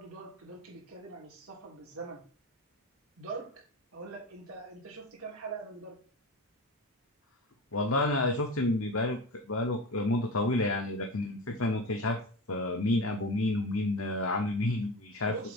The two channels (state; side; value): normal; both; correlation 0.28